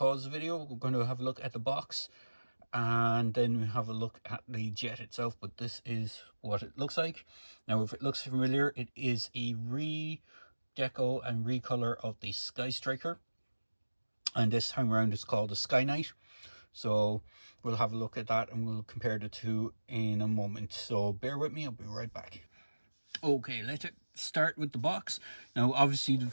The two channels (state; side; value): inverted; both; correlation -1.00